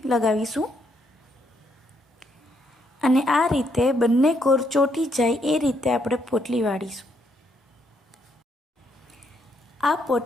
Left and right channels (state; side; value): normal; both; correlation 0.74